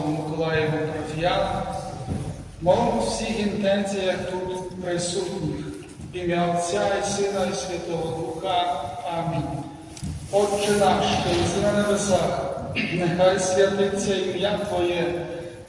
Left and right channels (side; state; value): both; identical; correlation 1.00